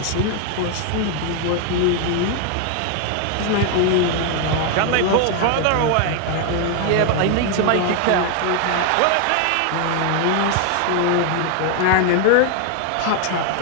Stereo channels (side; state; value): both; different; correlation 0.01